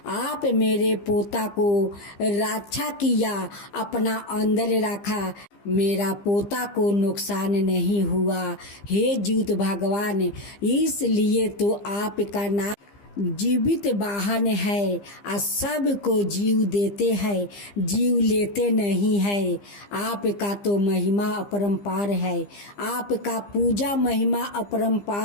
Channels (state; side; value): late; right; 15 ms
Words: आप मेरे पोता को रक्षा किया, अपना अंदर रखा, मेरा पोता को नुकसान नहीं हुआ। हे जीवित भगवान, इसलिए तो आपका नाम जीवित वाहन है और सबको जीव देते हैं, जीव लेते नहीं है। आपका तो महिमा अपरंपार है, आपका पूजा महिमा